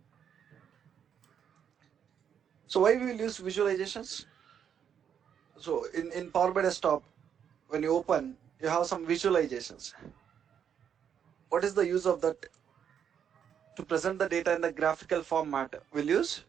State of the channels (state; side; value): quieter; left; 8.3 dB